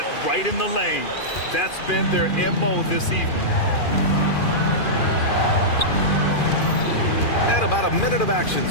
right in the lane. That's been their MO this evening. And about a minute of action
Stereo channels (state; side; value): late; right; 2.4 ms